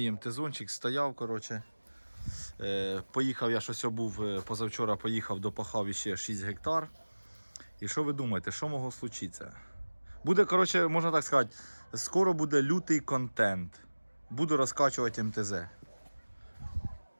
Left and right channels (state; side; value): inverted; both; correlation -1.00